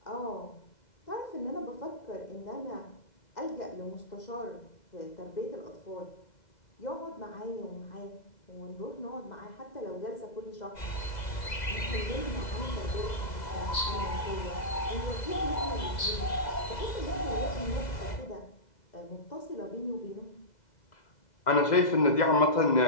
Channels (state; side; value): late; right; 2.0 ms